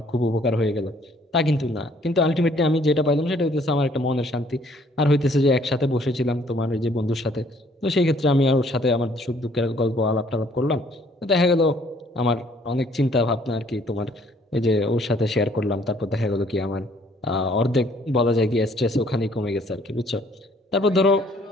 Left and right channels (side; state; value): both; normal; correlation 0.62